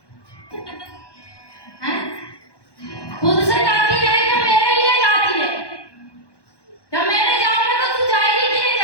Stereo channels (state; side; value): late; right; 1.2 ms